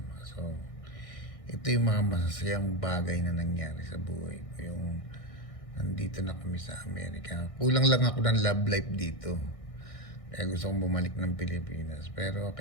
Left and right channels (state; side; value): late; right; 1.6 ms